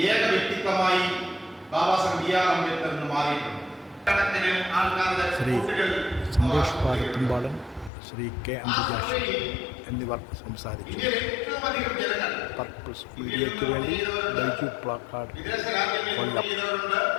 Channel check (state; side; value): drops out; right; at 7.9 s